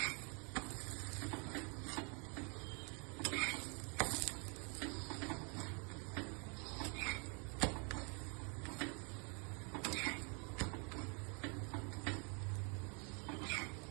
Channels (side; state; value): left; quieter; 35.8 dB